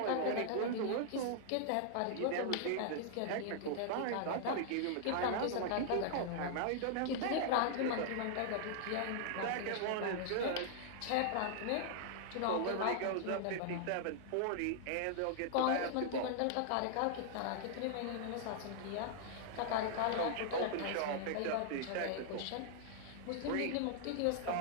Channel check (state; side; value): different; both; correlation -0.01